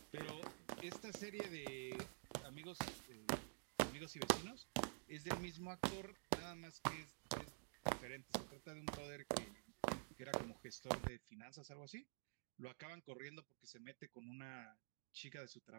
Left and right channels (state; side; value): silent; left; digital silence